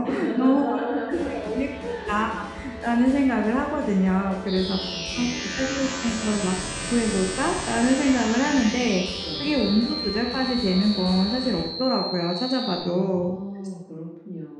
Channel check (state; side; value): identical; both; correlation 1.00